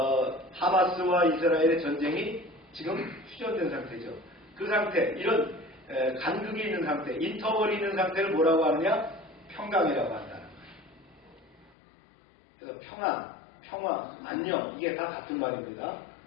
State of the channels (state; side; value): drops out; right; at 11.7 s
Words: 하마스와 이스라엘의 전쟁이 지금 휴전된 상태죠. 그 상태, 이런 간극이 있는 상태, 인터벌이 있는 상태를 뭐라고 하느냐? 평강이라고 한다는 거예요. 그래서 평화, 안녕, 이게 다 같은 말입니다.